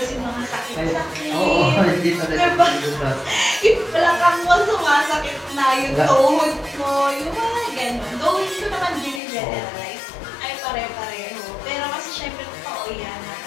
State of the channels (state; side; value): drops out; right; at 9.2 s